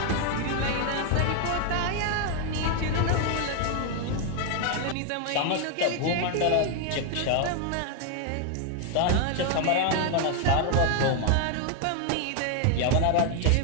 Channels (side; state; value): both; different; correlation 0.00